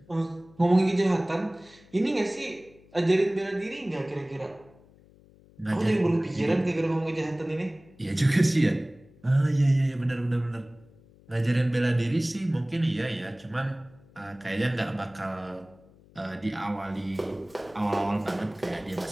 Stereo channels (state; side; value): noise; left; hum, 26 dB below the sound